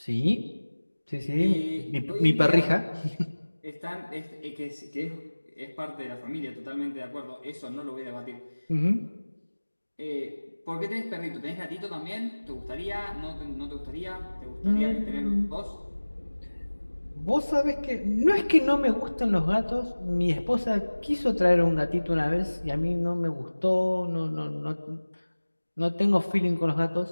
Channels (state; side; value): inverted; both; correlation -1.00